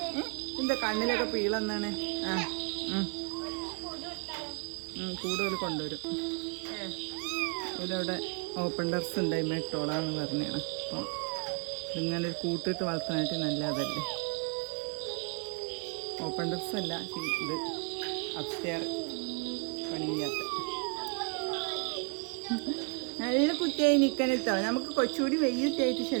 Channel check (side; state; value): left; quieter; 37.9 dB